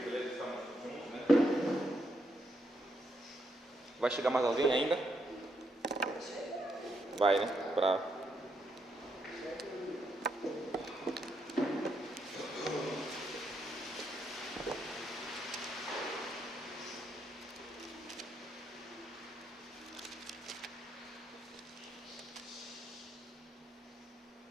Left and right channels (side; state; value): both; normal; correlation 0.79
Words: estamos juntos, né? Vai chegar mais alguém ainda? Vai, né?